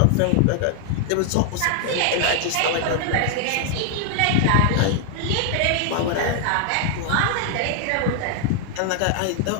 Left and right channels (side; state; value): both; different; correlation 0.00